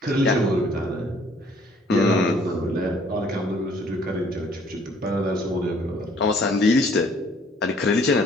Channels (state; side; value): normal; both; correlation 0.59